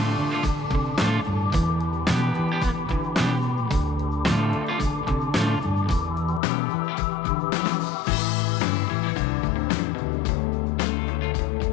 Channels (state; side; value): drops out; right; at 6.4 s